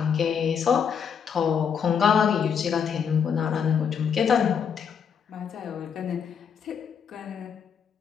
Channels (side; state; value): right; quieter; 7.2 dB